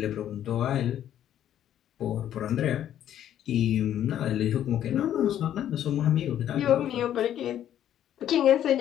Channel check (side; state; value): right; quieter; 11.0 dB